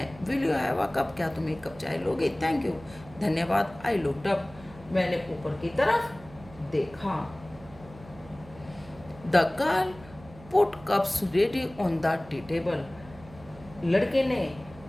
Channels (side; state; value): right; noise; hum, 20 dB below the sound